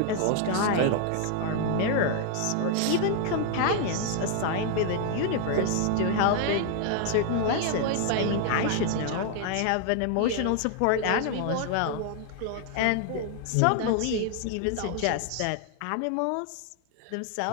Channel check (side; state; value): both; different; correlation 0.00